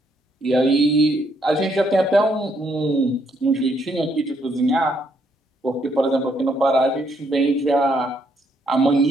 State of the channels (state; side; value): normal; both; correlation 0.72